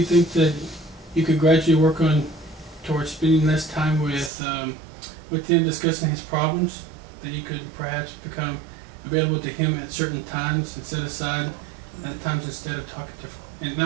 think that you could gradually work on towards spending less time with him, discussing his problems? That you could perhaps become available to him at certain times and set aside at times instead of talking to, and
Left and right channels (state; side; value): drops out; left; at 4.3 s